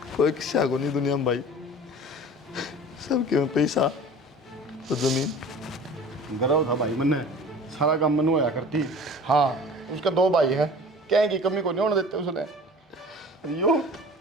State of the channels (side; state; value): both; normal; correlation 0.42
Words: कोई किस्सा को नहीं दुनिया में भाई सबके में पैसा तो जमीन गर्व था भाई मैंने सारा काम मनु होया करती हाँ उसका 2 भाई हैं क्या की कमी को नहीं होने देते उसने यो